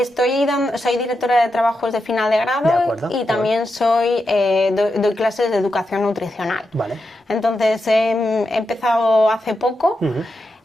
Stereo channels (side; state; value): both; normal; correlation 0.87